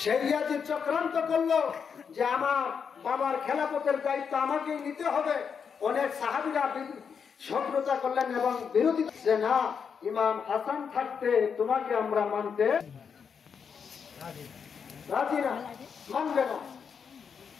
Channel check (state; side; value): quieter; right; 6.6 dB